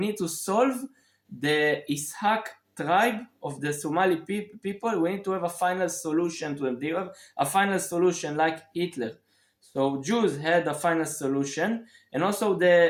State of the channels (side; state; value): both; identical; correlation 1.00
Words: to solve the Ishaq tribe of the Somali people. We need to have a final solution to them. They have a final solution like Hitler. So Jews had a final solution, and also